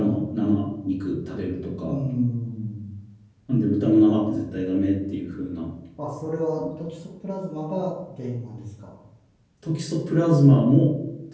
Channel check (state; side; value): identical; both; correlation 1.00